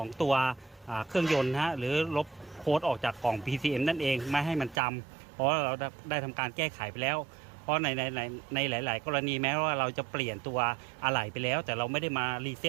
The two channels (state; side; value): drops out; left; at 4.8 s